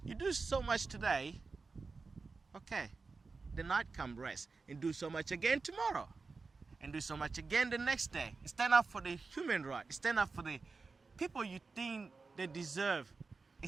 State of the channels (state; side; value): quieter; left; 4.3 dB